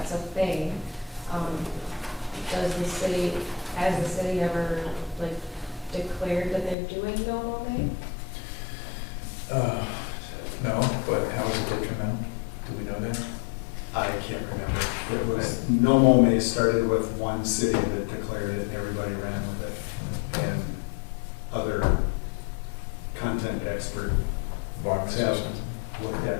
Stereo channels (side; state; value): right; drops out; at 6.8 s